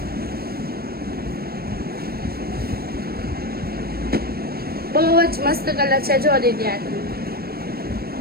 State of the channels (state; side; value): late; left; 0.44 ms